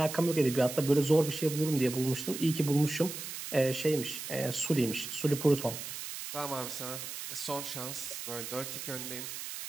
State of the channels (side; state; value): right; noise; hiss, 8 dB below the sound